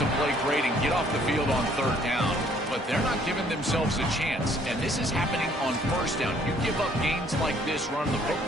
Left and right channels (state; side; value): normal; both; correlation 0.62